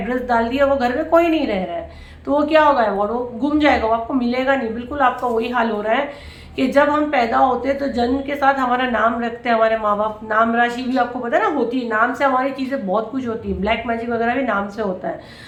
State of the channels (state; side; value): identical; both; correlation 1.00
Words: डाल दिया, वो घर में कोई नहीं रह रहा है, तो वो क्या होगा, अवार्ड वो गुम जाएगा, वो आपको मिलेगा नहीं। बिल्कुल आपका वही हाल हो रहा है कि जब हम पैदा होते हैं तो जन्म के साथ हमारा नाम रखते हैं हमारे माँ बाप। नाम राशि भी आपको पता है ना होती है, नाम से हमारी चीज़ें बहुत कुछ होती है। ब्लैक मैजिक वगैरह भी नाम से होता है।